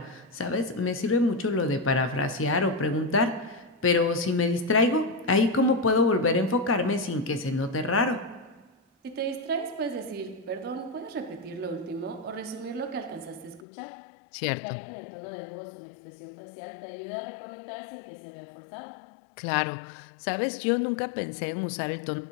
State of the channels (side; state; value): right; drops out; at 13.7 s